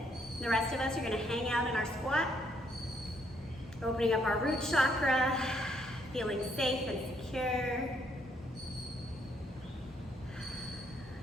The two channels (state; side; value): normal; both; correlation 0.71